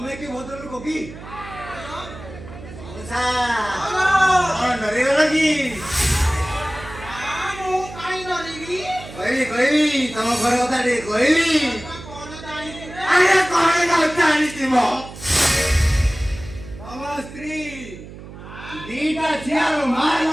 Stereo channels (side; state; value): right; noise; hum, 15 dB below the sound